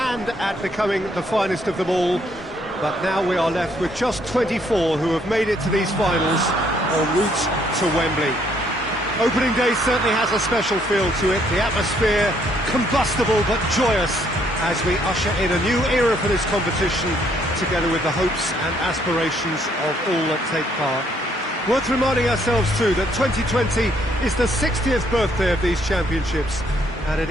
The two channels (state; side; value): normal; both; correlation 0.68